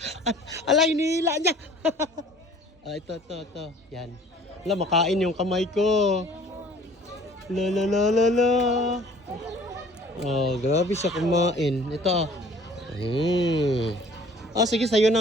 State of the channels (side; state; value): both; normal; correlation 0.51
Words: Ala, hinihila niya. Ito. Yan. Ala, makain yung kamay ko. La. Oh, grabe siya kumain. Ito. Oh, sige, sa'yo